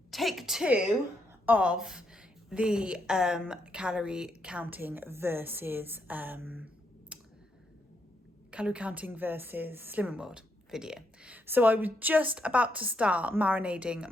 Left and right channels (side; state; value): both; normal; correlation 0.77